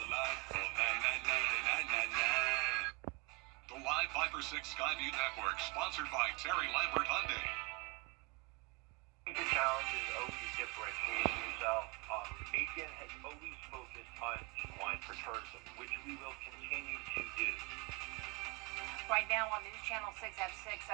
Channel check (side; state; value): left; quieter; 28.1 dB